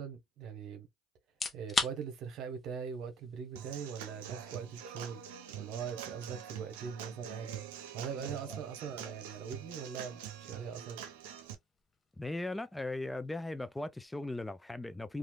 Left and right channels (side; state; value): both; normal; correlation 0.61